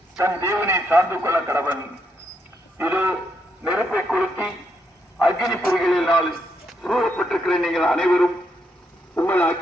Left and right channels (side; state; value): both; normal; correlation 0.78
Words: தன் தேவனை சார்ந்து கொள்ள கடவன். இது நெருப்பை கொளுத்தி அக்னி பொறிகளினால் சூழப்பட்டிருக்கிற நீங்கள் அனைவரும் உங்கள்